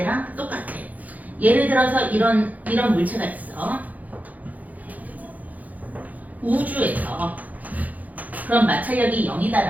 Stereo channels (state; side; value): late; left; 0.078 ms